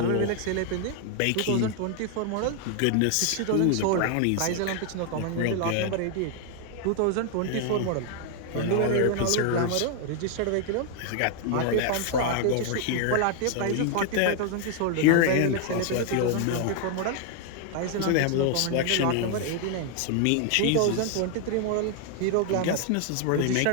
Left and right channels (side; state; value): both; different; correlation 0.00